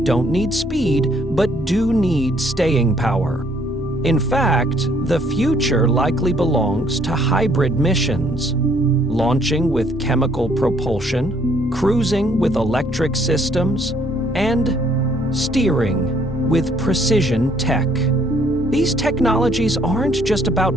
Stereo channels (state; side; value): normal; both; correlation 0.65